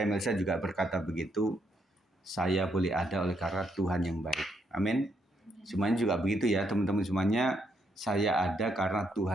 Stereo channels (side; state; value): both; normal; correlation 0.76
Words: Melisa juga berkata begitu. Saya boleh ada oleh karena Tuhan yang baik. Amin. Semuanya juga begitu ya teman-teman semuanya. Saya ada karena